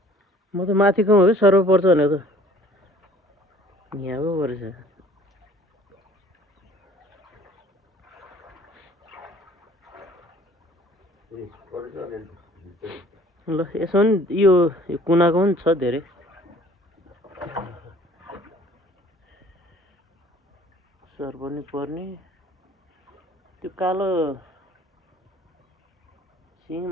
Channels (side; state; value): both; normal; correlation 0.53